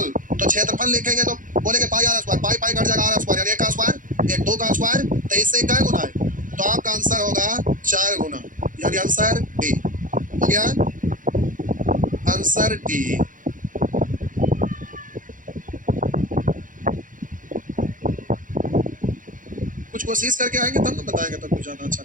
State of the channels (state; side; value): late; left; 0.39 ms